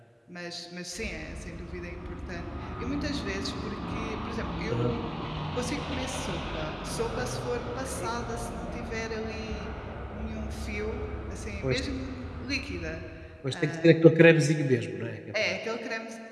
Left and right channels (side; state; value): both; identical; correlation 1.00